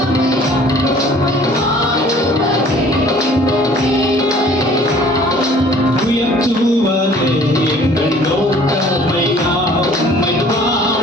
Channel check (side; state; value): both; normal; correlation 0.52